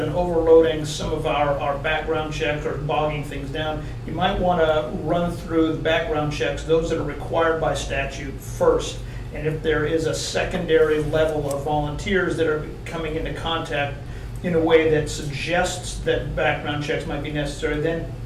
overloading some of our background checks or bogging things down, you might want to run through the background checks, those that are required by statute first. And if there is a secondary level of volunteers that are coming into contact in a way that suggests that background checks might be necessary, then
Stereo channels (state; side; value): identical; both; correlation 1.00